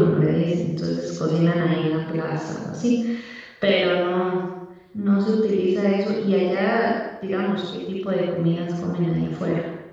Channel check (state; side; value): identical; both; correlation 1.00